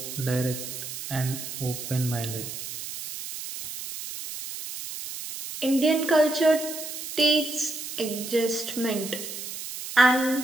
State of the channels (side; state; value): right; noise; hiss, 8 dB below the sound